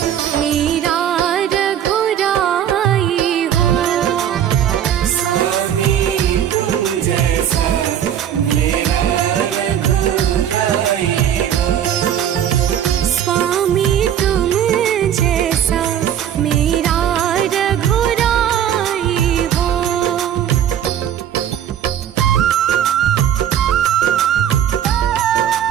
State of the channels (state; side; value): quieter; left; 9.8 dB